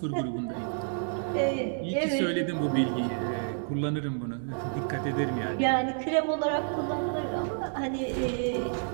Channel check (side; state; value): left; silent; digital silence